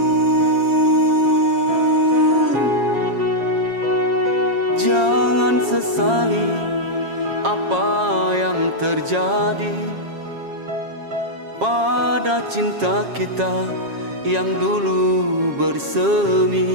Jangan sesali apa yang terjadi pada cinta kita yang dulu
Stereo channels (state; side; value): late; left; 7.4 ms